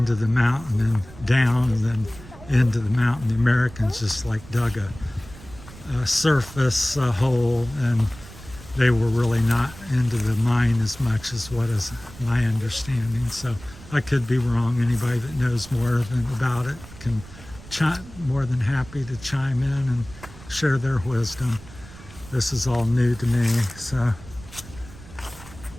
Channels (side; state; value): right; noise; rumble, 18 dB below the sound